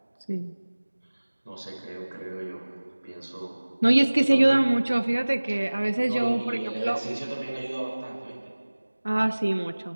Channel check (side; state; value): both; inverted; correlation -1.00